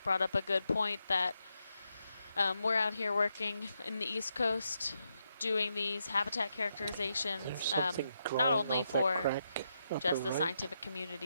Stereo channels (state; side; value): inverted; both; correlation -0.82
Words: brought up a good point that we're out here working in the East Coast doing these habitat characterizations, There's something not growing only off that for crack just upper the right. scientific